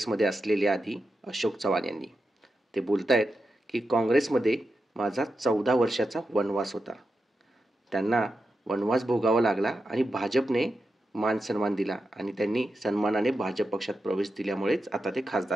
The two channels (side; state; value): both; normal; correlation 0.89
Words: असलेले आधी अशोक चव्हाण यांनी. ते बोलतायत की काँग्रेसमध्ये माझा 14 वर्षाचा वनवास होता. त्यांना वनवास भोगावा लागला आणि भाजपने मान सन्मान दिला आणि त्यांनी सन्मानाने भाजप पक्षात प्रवेश दिल्यामुळेच आता ते